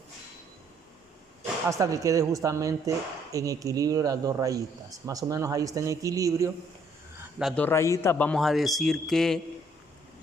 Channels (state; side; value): normal; both; correlation 0.65